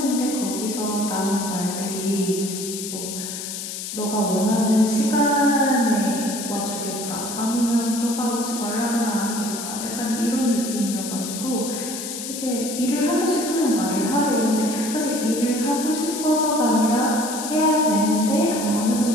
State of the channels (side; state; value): left; noise; hiss, 7 dB below the sound